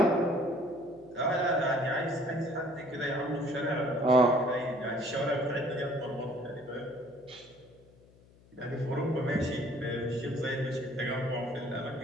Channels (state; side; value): noise; left; hum, 27 dB below the sound